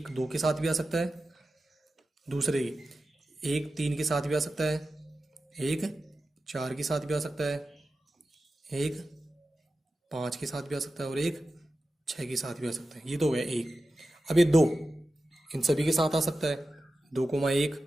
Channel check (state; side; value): normal; both; correlation 0.93